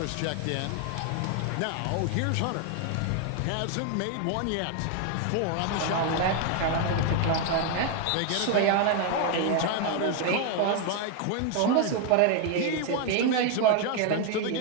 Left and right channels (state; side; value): different; both; correlation 0.01